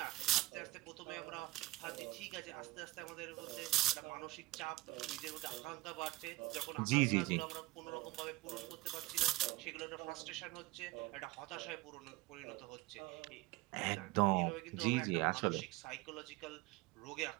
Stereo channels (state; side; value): quieter; left; 20.0 dB